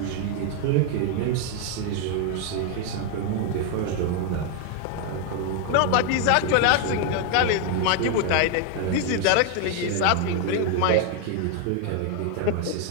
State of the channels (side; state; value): both; different; correlation 0.00